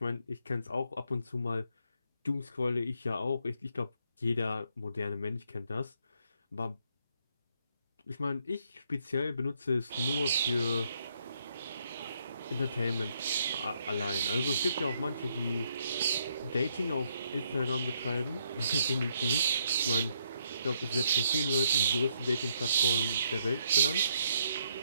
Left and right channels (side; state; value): both; inverted; correlation -0.73